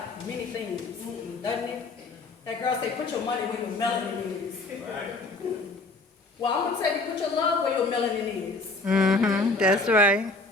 Doesn't it? That girl say, put your money where your melanin is. Well, I'm going to tell you, put your love where your melanin is. That's right.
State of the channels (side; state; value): right; quieter; 3.3 dB